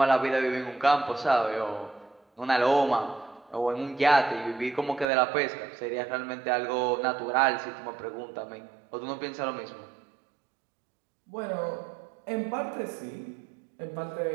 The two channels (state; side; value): drops out; left; at 5.1 s